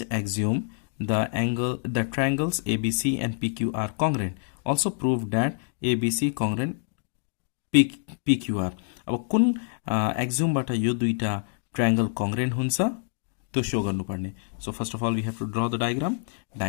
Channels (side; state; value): right; silent; 60 dB below the other